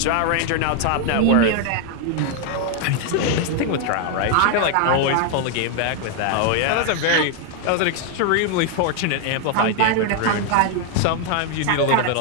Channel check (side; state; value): both; different; correlation 0.00